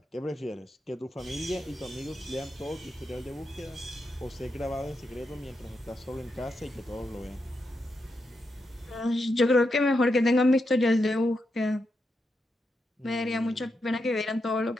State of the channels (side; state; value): both; normal; correlation 0.85